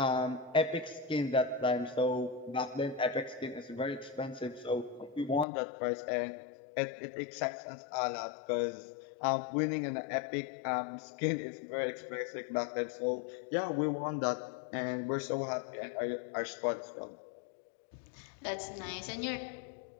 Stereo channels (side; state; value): right; drops out; at 5.5 s